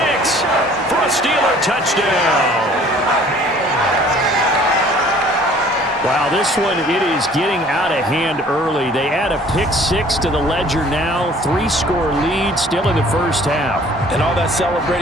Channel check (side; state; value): both; normal; correlation 0.53